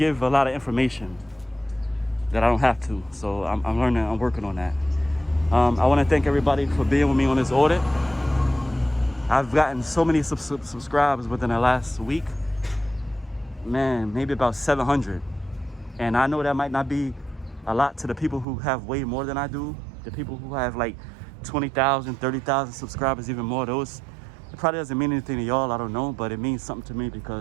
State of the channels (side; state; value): left; drops out; at 18.4 s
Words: lot of information that I don't have to. So I'm learning, I'm working on that. I want to thank everybody for being with me on this audit. I've gotten so many subscribers within the last week. Man, maybe about 700. And I know that might not be a lot to the people who have way more than I do. The people who have like 20,000, 30,000 subscribers, even more. Those, it probably doesn't mean anything to y'all, I don't know, but it means something to me